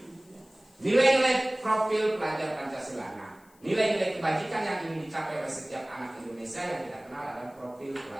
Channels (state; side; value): noise; left; hiss, 30 dB below the sound